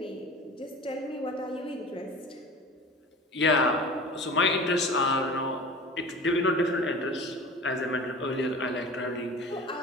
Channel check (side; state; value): both; normal; correlation 0.38